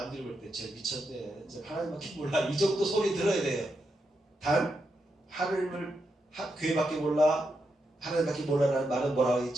볼 때 쟤 미쳤네, 쟤 하나님밖에 몰라, 이 정도 소리 들어야 돼요. 단 하나님을 교회밖에 몰라, 하나님밖에 몰라라는 말은 뭐라고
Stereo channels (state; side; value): normal; both; correlation 0.84